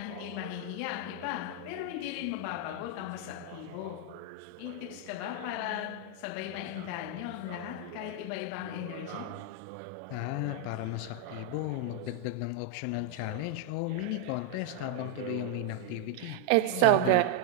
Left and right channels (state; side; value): different; both; correlation 0.00